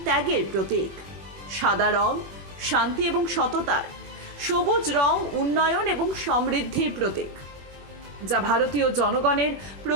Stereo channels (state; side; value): late; left; 21 ms